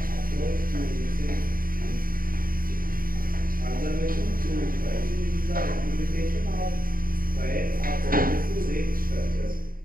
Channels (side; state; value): left; late; 0.41 ms